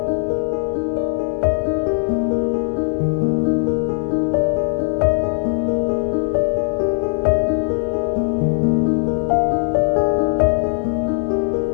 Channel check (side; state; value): right; silent; digital silence